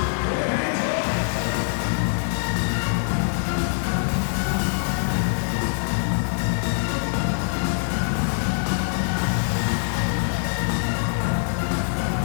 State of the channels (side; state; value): right; silent; digital silence